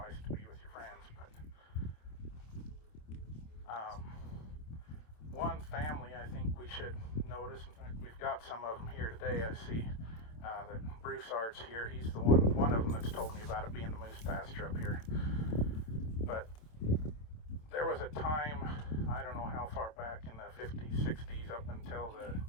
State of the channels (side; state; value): right; late; 27 ms